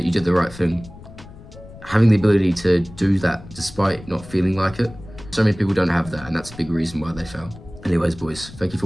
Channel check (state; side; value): noise; left; rumble, 17 dB below the sound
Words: you did the right thing. Having the ability to do that despite not feeling like it, so many people don't have that, and that's a big reason why they fail. Anyways, boys, thank you for